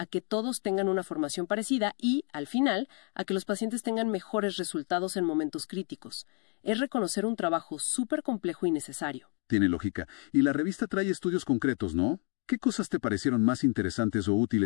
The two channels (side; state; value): right; quieter; 39.6 dB